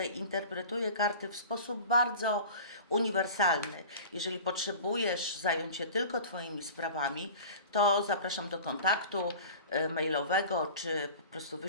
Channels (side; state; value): both; inverted; correlation -0.38